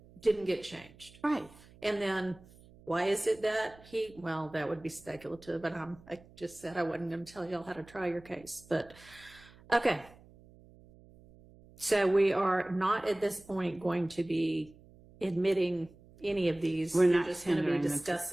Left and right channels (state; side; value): noise; right; hum, 24 dB below the sound